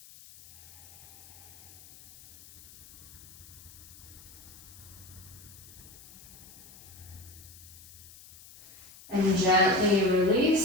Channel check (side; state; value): left; noise; hiss, 20 dB below the sound